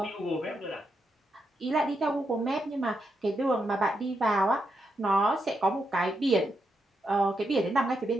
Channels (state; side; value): normal; both; correlation 0.83